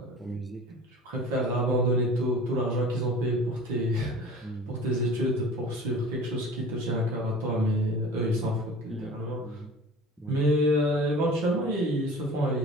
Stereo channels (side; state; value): both; normal; correlation 0.41